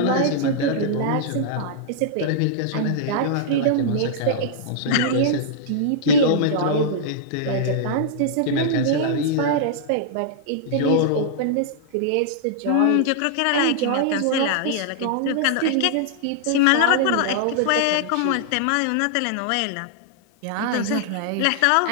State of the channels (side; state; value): both; different; correlation -0.01